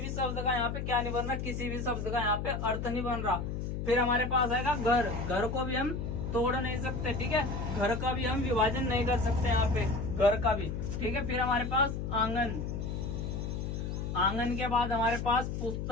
शब्द का यहाँ पे क्या नहीं बन रहा? किसी भी शब्द का यहाँ पे अर्थ नहीं बन रहा। फिर हमारे पास आएगा घर। घर को भी हम तोड़ नहीं सकते, ठीक है। घर का भी हम विभाजन नहीं कर सकते यहाँ पे, घर का भी, ठीक है। फिर हमारे पास आंगन। आंगन के बाद हमारे पास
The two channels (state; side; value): noise; left; hum, 3 dB below the sound